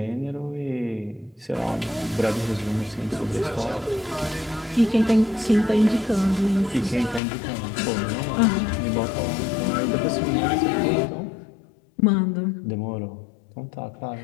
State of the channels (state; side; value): drops out; right; at 7.2 s